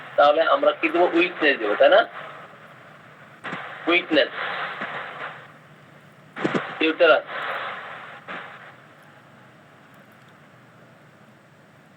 তাহলে আমরা কি দেবো? উইকনেস দেবো, তাই না? উইকনেস ইউটেরাস,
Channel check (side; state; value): both; identical; correlation 1.00